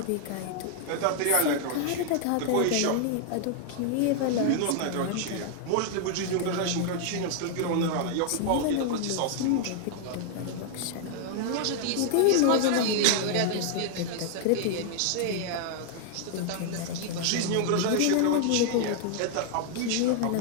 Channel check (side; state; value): both; different; correlation 0.00